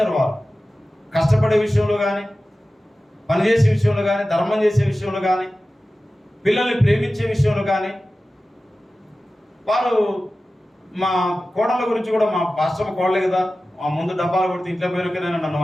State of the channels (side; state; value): both; normal; correlation 0.95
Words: వారు కష్టపడే విషయంలో కానీ, పనిచేసే విషయంలో కానీ, ధర్మం చేసే విషయంలో కానీ, పిల్లల్ని ప్రేమించే విషయంలో కానీ. వారు మా కోడళ్ళ గురించి కూడా, మా పాస్టర్ కోడలే కదా, మా ముందు డబ్బాలు కొడితే ఇంట్లో పోయిన నన్ను